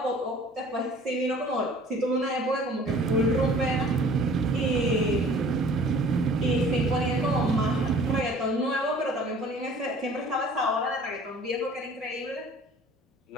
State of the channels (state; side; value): normal; both; correlation 0.49